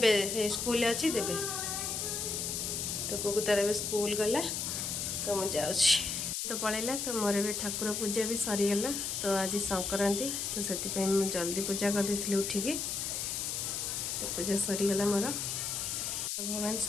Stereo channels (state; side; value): noise; left; hiss, 2 dB below the sound